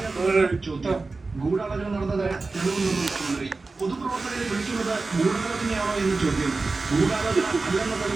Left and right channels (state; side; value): quieter; left; 3.7 dB